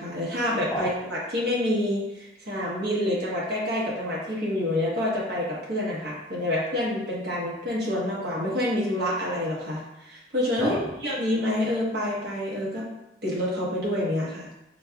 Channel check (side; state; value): both; normal; correlation 0.42